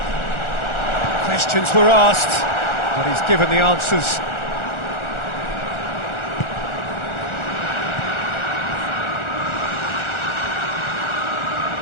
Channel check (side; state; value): right; late; 1.4 ms